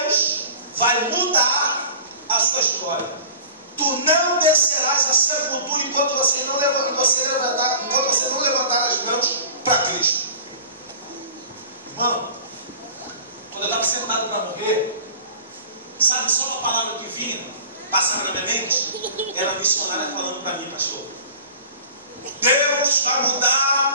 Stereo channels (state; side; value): inverted; both; correlation -0.40